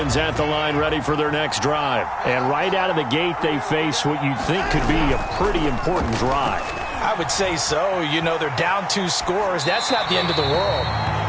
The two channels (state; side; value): identical; both; correlation 1.00